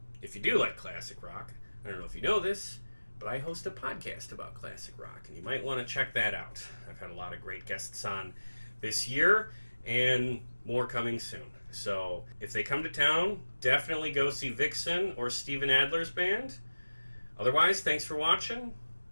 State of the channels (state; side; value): inverted; both; correlation -1.00